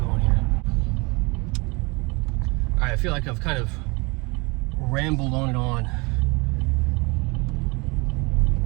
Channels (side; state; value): left; quieter; 27.5 dB